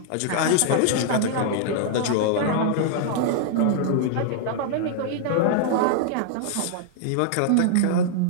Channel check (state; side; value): different; both; correlation -0.01